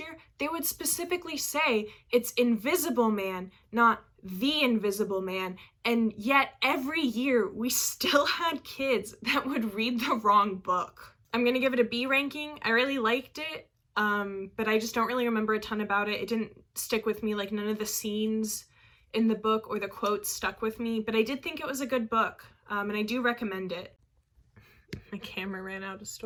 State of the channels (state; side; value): identical; both; correlation 1.00